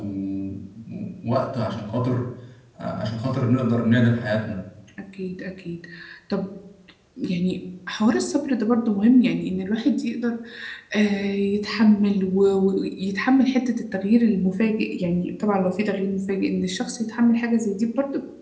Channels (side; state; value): both; identical; correlation 1.00